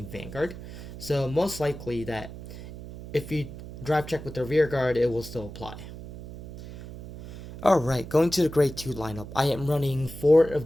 Vanguard. So most likely that if you drive check with the rear guard, it will still apply. Alright, going to the grade 2 lineup. I am running 4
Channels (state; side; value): noise; right; hum, 12 dB below the sound